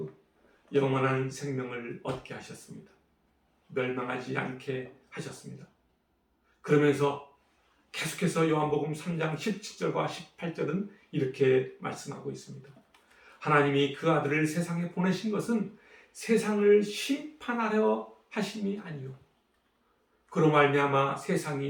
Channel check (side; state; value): both; identical; correlation 1.00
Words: 영원한 생명을 얻게 하셨습니다. 멸망하지 않게 하셨습니다. 그러면서 계속해서 요한복음 3장 17절과 18절은 이렇게 말씀하고 있습니다. 하나님이 그 아들을 세상에 보내신 것은 세상을 심판하려 하심이 아니요 그로 말미암아